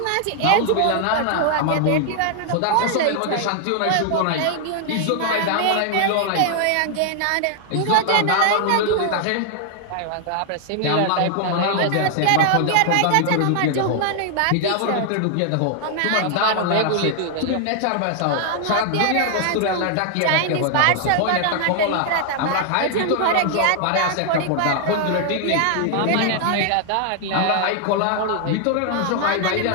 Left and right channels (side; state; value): both; different; correlation 0.00